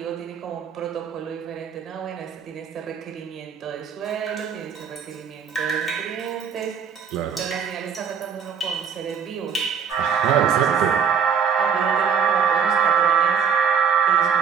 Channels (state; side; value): quieter; left; 6.9 dB